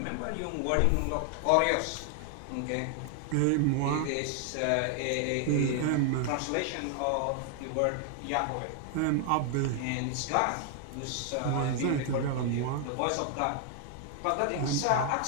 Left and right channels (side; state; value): both; different; correlation 0.00